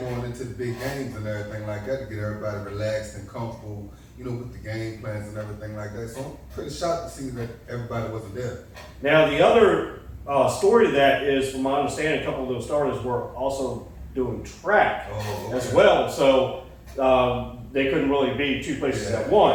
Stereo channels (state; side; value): identical; both; correlation 1.00